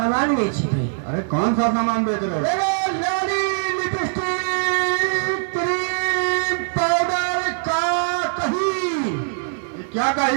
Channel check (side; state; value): left; silent; digital silence